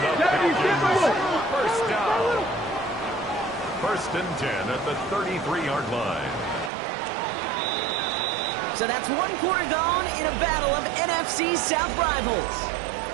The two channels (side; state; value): left; drops out; at 6.7 s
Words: First down. 1st and 10 at the 33-yard line. So that's 1 quarter gone in a battle of NFC South rivals.